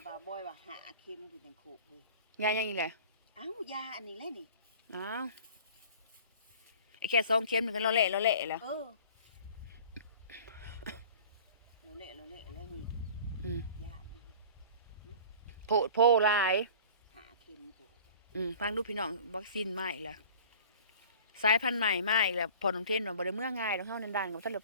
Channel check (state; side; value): inverted; both; correlation -0.44